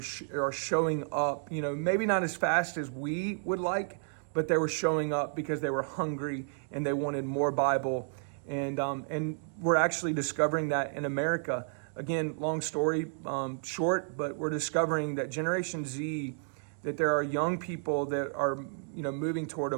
showing up. Maybe not as fast as we would like, but they were showing up because they were hungry and they wanted more Bible, and we're actually discovering that in America. Again, long story short, but we're discovering that Generation Z, that there are young people that are, moving toward a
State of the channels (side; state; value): left; silent; digital silence